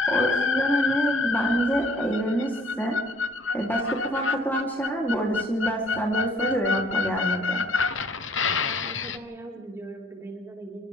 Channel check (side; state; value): both; normal; correlation 0.59